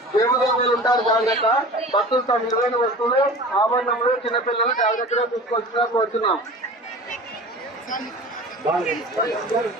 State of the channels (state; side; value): normal; both; correlation 0.38